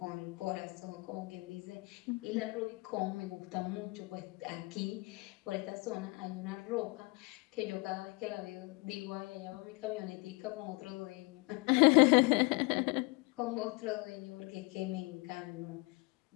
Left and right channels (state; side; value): quieter; right; 26.2 dB